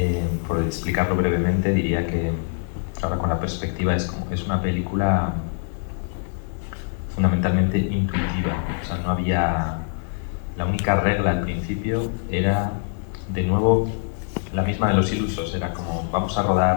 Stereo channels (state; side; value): silent; right; digital silence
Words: Por explicarlo brevemente, diría que ahora con la perspectiva es una película fundamentalmente intuitiva. O sea, no había... La única regla al principio era, de nuevo, la misma de Los Ilusos. Era como, vamos a